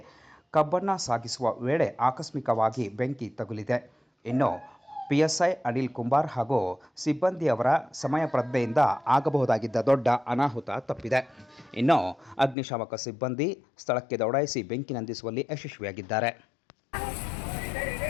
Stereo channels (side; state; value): right; drops out; at 12.6 s